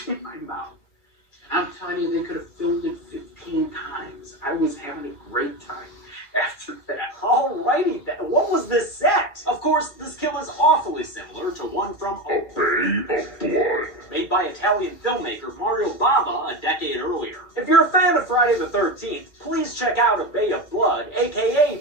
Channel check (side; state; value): right; late; 2.2 ms